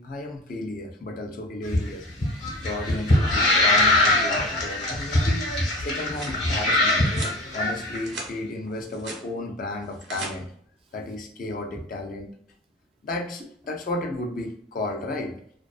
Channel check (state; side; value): normal; both; correlation 0.35